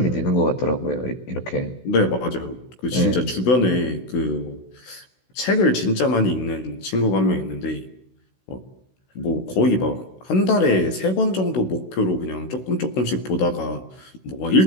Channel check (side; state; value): right; late; 16 ms